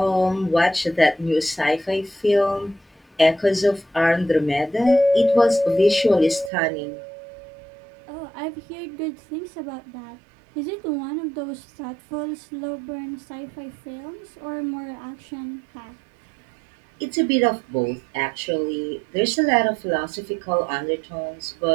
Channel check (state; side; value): drops out; left; at 6.5 s